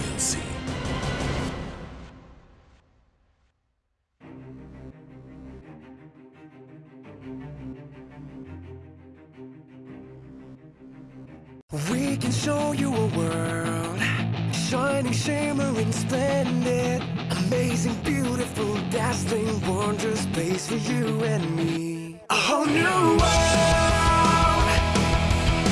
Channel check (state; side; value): identical; both; correlation 1.00